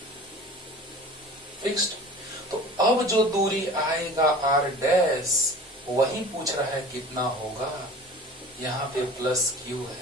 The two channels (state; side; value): normal; both; correlation 0.41